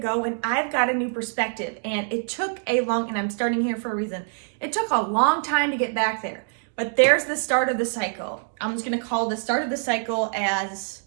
and I've got a new perspective, and it took and I'm starting here for a reason. It took a long time to get back there, but there's the start of the cycle. I'm just gonna call the start of the cycle as,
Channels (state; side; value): silent; left; digital silence